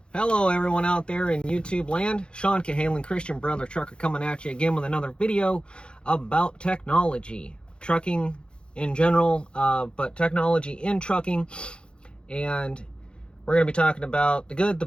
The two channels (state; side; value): late; right; 0.053 ms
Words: Hello everyone out there in YouTube land. Sean Cahalan, Christian Brother Trucker, coming at you again with another video about technology. Trucking in general, but technology in trucking. And we're going to be talking about the good, the